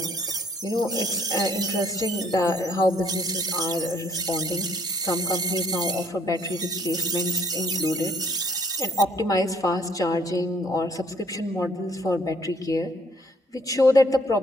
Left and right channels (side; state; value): both; normal; correlation 0.64